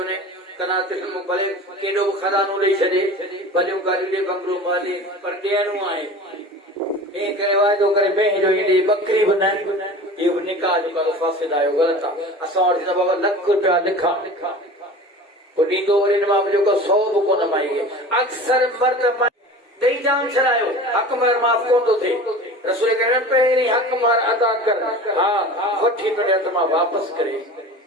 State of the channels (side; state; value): both; normal; correlation 0.37